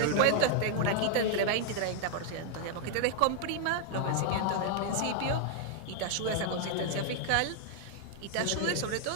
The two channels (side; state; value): both; different; correlation 0.00